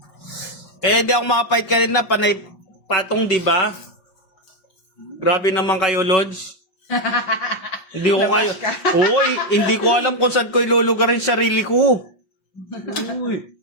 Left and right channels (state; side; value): late; right; 5.3 ms